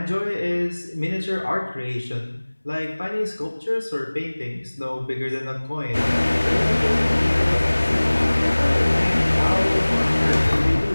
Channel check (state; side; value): inverted; both; correlation -1.00